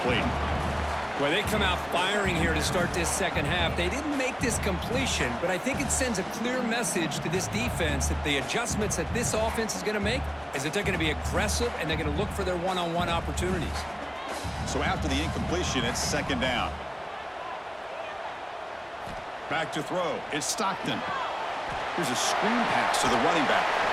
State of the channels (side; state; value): both; identical; correlation 1.00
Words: Well, they come out firing here to start this second half. They didn't make this completion, but I think it sends a clear message to this defense that the adjustments that this offense is going to make is that they're going to be aggressive and they're going to look for their one-on-one opportunities. So after the incompletion, it's second down. Back to throw. It's Stockton. Here's a screen pass to the running back.